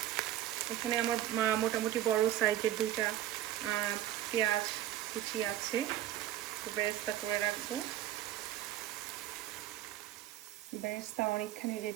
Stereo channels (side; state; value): left; quieter; 12.7 dB